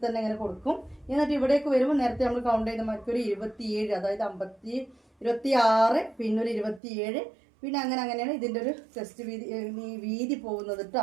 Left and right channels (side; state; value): left; drops out; at 6.8 s